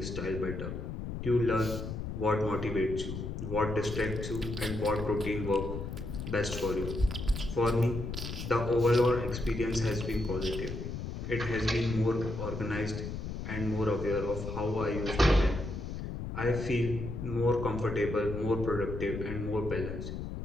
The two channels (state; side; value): noise; left; rumble, 6 dB below the sound